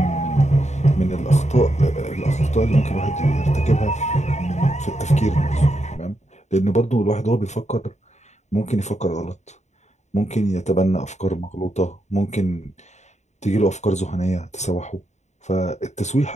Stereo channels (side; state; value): right; late; 0.33 ms